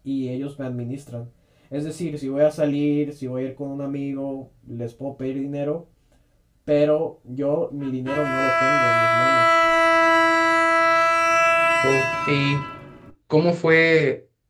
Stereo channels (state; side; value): identical; both; correlation 1.00